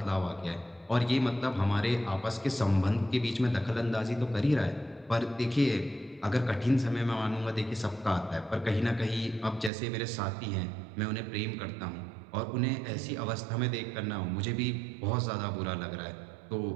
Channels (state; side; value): drops out; left; at 9.7 s